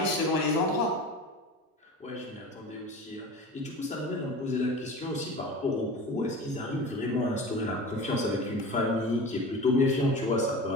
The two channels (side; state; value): both; normal; correlation 0.33